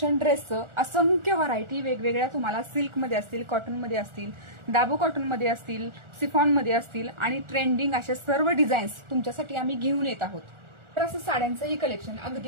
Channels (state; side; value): late; left; 1.4 ms